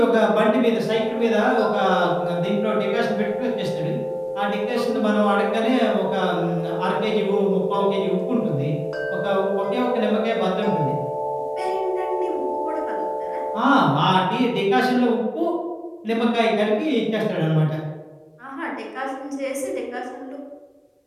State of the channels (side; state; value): both; identical; correlation 1.00